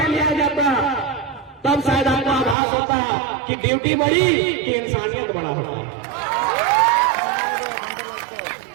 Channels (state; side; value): drops out; left; at 2.6 s